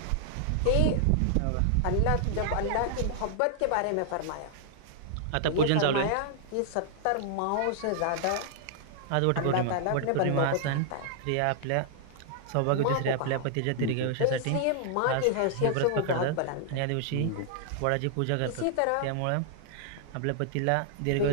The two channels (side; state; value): both; different; correlation -0.01